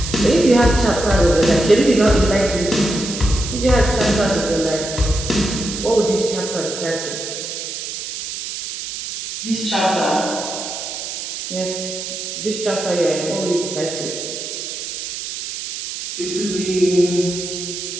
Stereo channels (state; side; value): noise; right; hiss, 7 dB below the sound